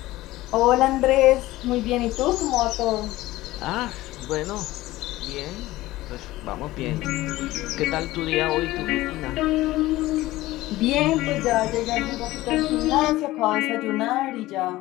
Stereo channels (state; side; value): quieter; right; 17.4 dB